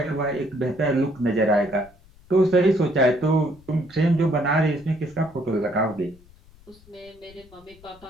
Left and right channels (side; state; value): left; noise; rumble, 26 dB below the sound